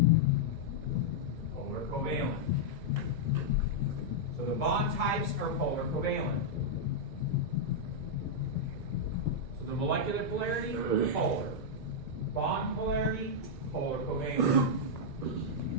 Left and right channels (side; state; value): right; late; 1.9 ms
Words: polar covalent. So the bond types are polar covalent. So the molecular polarity, polar. Bond polarity, polar covalent.